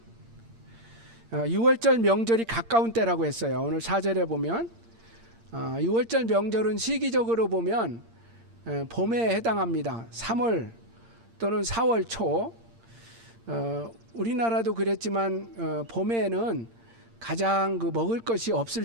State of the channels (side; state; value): left; late; 8.7 ms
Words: 6월절 명절이 가까운 때라고 했어요. 오늘 4절에 보면 6월절 명절은 시기적으로 보면 봄에 해당합니다. 3월 또는 4월 초. 우리나라도 그랬지만 봄에는 가장 그 먹을 것이 없을